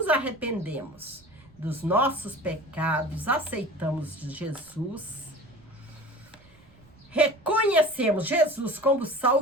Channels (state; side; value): noise; right; rumble, 28 dB below the sound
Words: arrependemos dos nossos pecados, aceitamos Jesus, reconhecemos Jesus como